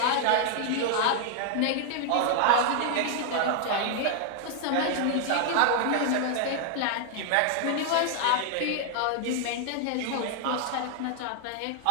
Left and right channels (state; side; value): different; both; correlation 0.00